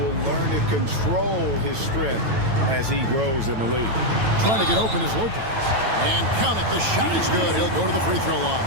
learn to control his strength as he grows in the league. Trying to get open is Lopez. And count it, the shot is good. He'll go to the free throw line.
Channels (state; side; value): late; left; 9.1 ms